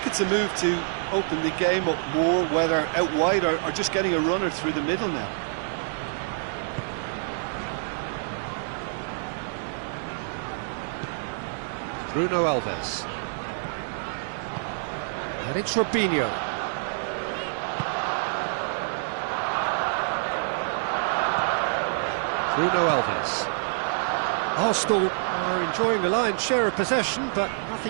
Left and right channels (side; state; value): left; silent; 60 dB below the other